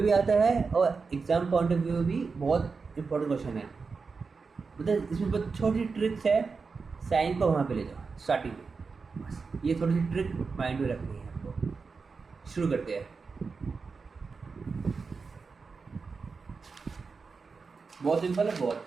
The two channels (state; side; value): quieter; left; 4.8 dB